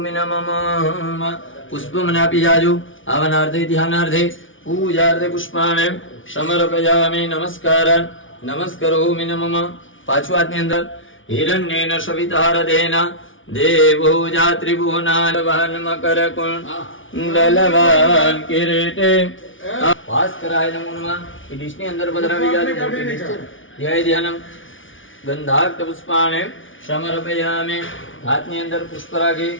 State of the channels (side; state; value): right; late; 0.57 ms